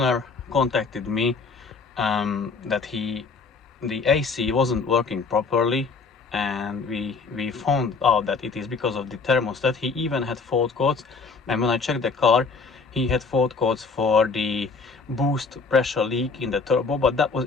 contacted me that the AC wasn't working properly, and we found out that it is because of the thermostat. He even had fault codes, and when I checked the car, he had fault codes for the boost pressure leak in the turbo, but that was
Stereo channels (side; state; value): right; quieter; 4.5 dB